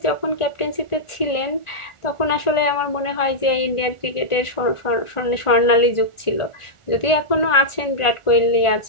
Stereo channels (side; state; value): right; late; 1.4 ms